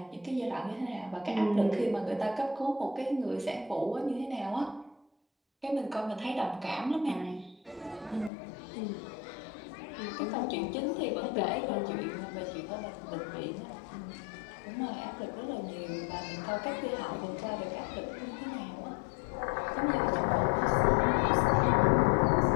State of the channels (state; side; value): drops out; right; at 8.3 s